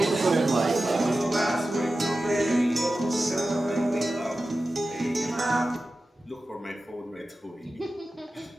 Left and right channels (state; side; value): normal; both; correlation 0.94